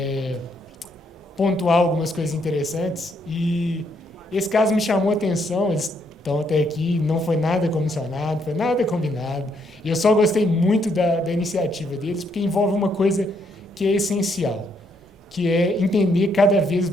pontuar algumas coisas interessantes, e esse caso me chamou a atenção. Eles estão até aqui, não foi nada comissionado, foi nada combinado, e eu só gostei muito da iniciativa deles, porque envolve uma coisa que é essencial, que é entender cada vez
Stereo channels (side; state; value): both; normal; correlation 0.73